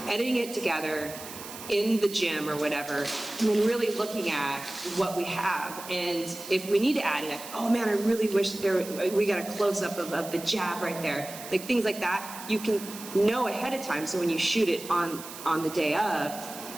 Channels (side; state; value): right; noise; hiss, 13 dB below the sound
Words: editing it together in the gym or whatever, and then really looking at what we have. And if we need to add it, oh man, I really wish we got a close-up of the jab right there. Like things like that, you can know ahead of time, so when you shoot it on the day